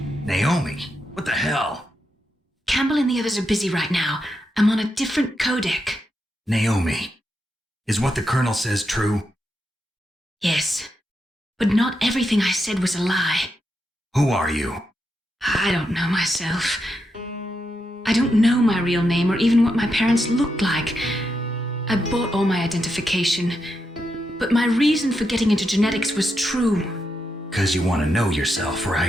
Naomi? What the hell? Campbell and the others are busy right now. I'm on a different codec. Naomi, is what the Colonel says true? Yes, but not everything I said was a lie. Who are you? I don't know myself. I don't know my real name or even what my parents looked like. I bought all my identification, but my reason for getting into genetics was true. 'Cause you want to know yourself,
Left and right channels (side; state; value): both; normal; correlation 0.84